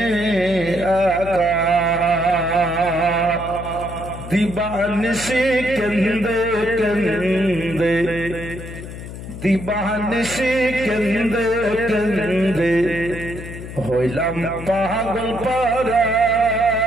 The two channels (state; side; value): noise; left; hum, 11 dB below the sound